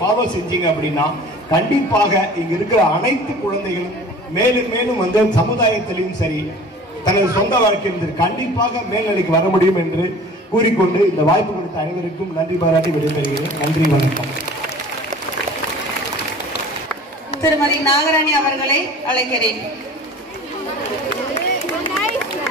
செஞ்சீங்க அப்படின்னா கண்டிப்பாக இங்க இருக்கிற அனைத்து குழந்தைகளும் மேலும் மேலும் சமுதாயத்திலையும் சரி தனது சொந்த வாழ்க்கையில் கண்டிப்பாக மேல்நிலைக்கு வர முடியும் என்று கூறிக்கொண்டு இந்த வாய்ப்பு கொடுத்த அனைவருக்கும் நன்றி பாராட்டி விடைபெறுகிறேன். நன்றி, வணக்கம். திருமதி நாகராணி அவர்களை அழைக்கிறேன்.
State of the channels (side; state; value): both; normal; correlation 0.44